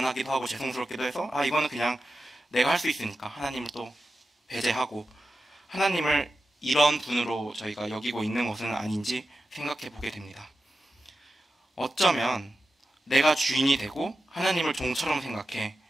하고 죄송스럽기도 해서 이거는 그냥 내가 할 수 있으니까 하나님을 또 배제하고 하나님을 이런 분으로 저희가 여기고 있는 것은 아닌지 생각해 보게 됩니다. 어쩌면 내가 주인이 되고 하나님을 종처럼 생각해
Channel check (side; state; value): both; normal; correlation 0.92